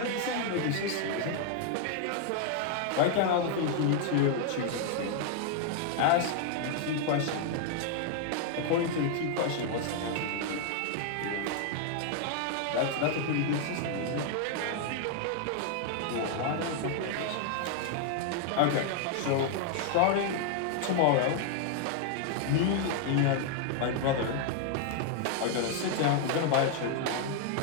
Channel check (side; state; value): both; different; correlation 0.00